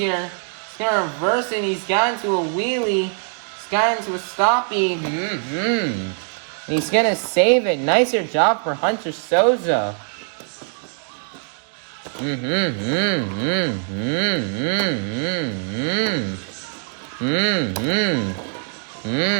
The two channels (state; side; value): silent; left; 55 dB below the other